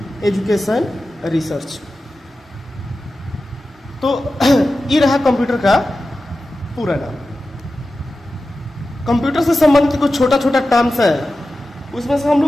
education research. तो ये रहा कंप्यूटर का पूरा नाम। कंप्यूटर से संबंधित कुछ छोटा छोटा टर्म्स है, उसमें से हम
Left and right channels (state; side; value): normal; both; correlation 0.94